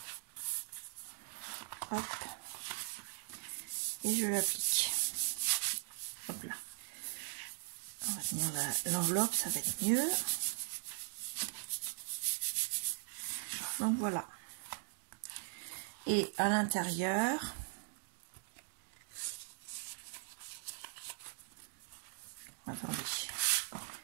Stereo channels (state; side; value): silent; left; digital silence